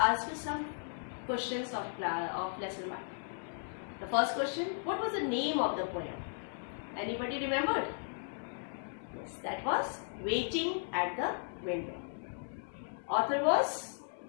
you some questions of lesson 1. The first question, what was the name of the poem? Anybody remembered? Yes, that was Waiting at the Window. Author was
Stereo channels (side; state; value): right; silent; 54 dB below the other